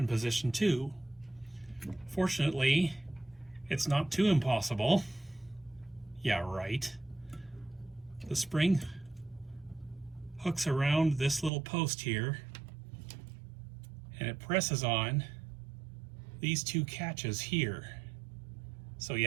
position too. Fortunately, it's not too impossible. Yeah, right. The spring hooks around this little post here, and it presses on these two catches here. So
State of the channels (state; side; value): drops out; left; at 11.5 s